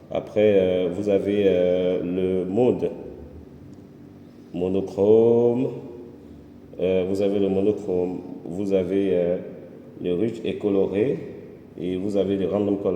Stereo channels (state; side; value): identical; both; correlation 1.00